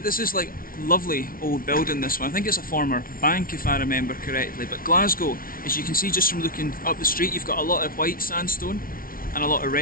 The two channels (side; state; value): right; late; 0.42 ms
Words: is like lovely old building, this one. I think it's a former bank if I remember correctly. But Glasgow, as you can see just from looking up the street, you've got a lot of white sandstone and a lot of